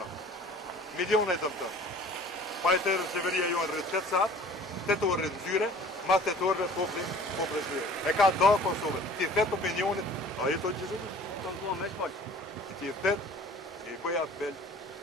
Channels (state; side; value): normal; both; correlation 0.48